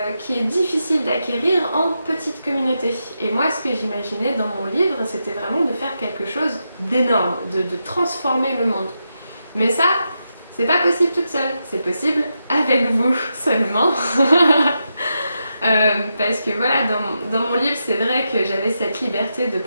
qui est difficile d'acquérir en petite communauté. Et moi, ce que j'imaginais dans mon livre, c'était vraiment de faire quelque chose d'énorme, de transformer le monde. Mais ça, c'est pas possible toute seule, c'est possible avec vous seulement. Parce que voilà, dans mon livre, c'est vrai que j'avais cette liberté de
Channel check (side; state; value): both; inverted; correlation -0.86